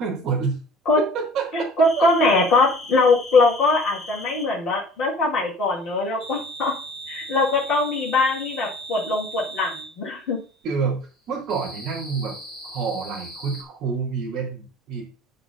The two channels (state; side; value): normal; both; correlation 0.46